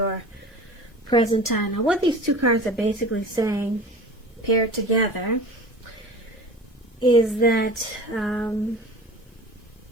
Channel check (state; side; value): normal; both; correlation 0.37